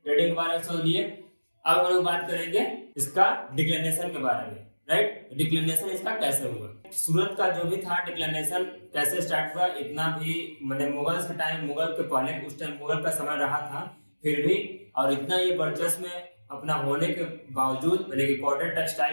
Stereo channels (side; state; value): both; inverted; correlation -1.00